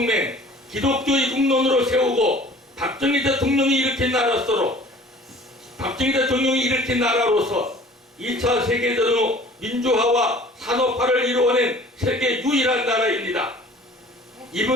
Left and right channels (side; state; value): both; normal; correlation 0.48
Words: 기독교의 국론으로 세우고 박정희 대통령이 일으킨 나라로서 2차 세계대전 후 민주화와 산업화를 이루어낸 세계 유일한 나라입니다.